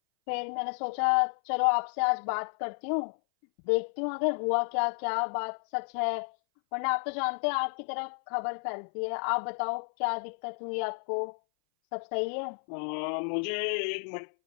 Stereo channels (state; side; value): silent; right; 57 dB below the other